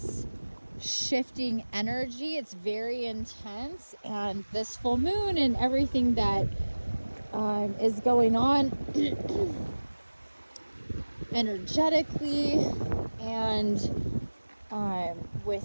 shifting energy. It's very intense, and this full moon and everything that is going on energetically and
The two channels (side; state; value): both; inverted; correlation -1.00